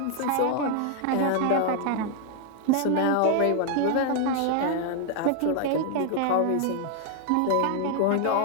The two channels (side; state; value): both; different; correlation 0.00